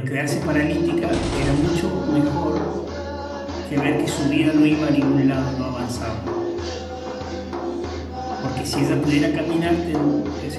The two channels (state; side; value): identical; both; correlation 1.00